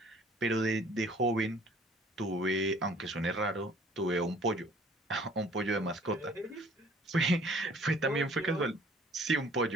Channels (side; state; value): both; normal; correlation 0.55